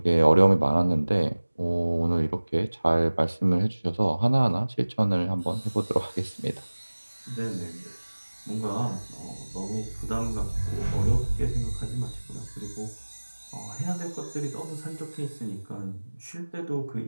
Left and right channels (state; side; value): inverted; both; correlation -1.00